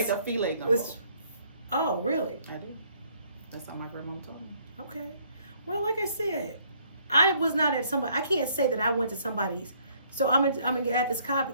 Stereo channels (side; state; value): both; inverted; correlation -0.64